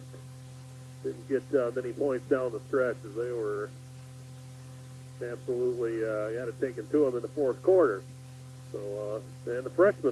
didn't get many points down the stretch as they were absolutely had it taken to them in the fourth quarter. So, and the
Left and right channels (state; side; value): identical; both; correlation 1.00